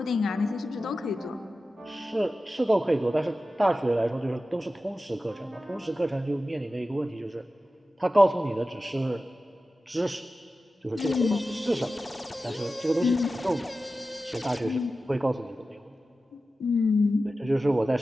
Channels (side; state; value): both; normal; correlation 0.94